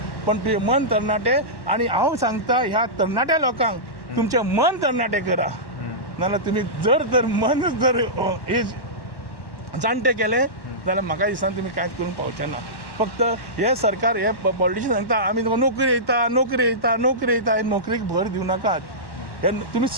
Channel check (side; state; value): right; late; 1.1 ms